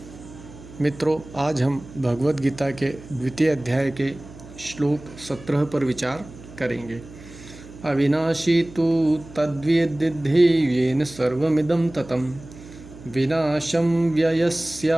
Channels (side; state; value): right; noise; hum, 18 dB below the sound